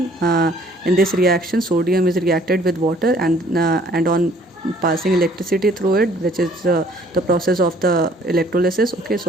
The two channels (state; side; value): normal; both; correlation 0.59